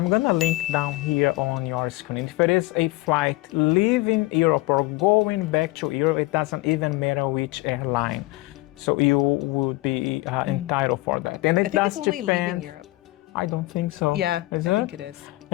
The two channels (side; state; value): right; quieter; 20.4 dB